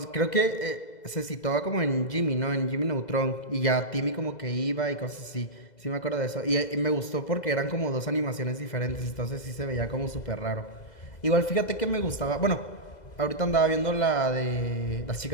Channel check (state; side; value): late; right; 2.0 ms